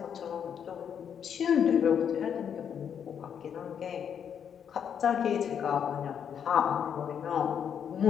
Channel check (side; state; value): right; quieter; 8.1 dB